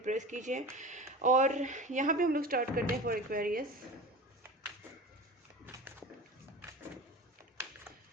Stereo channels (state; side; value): normal; both; correlation 0.34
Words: प्रेस कीजिए। और यहाँ पे हम लोग स्टार्ट करते हैं फॉर एक्वेरियस।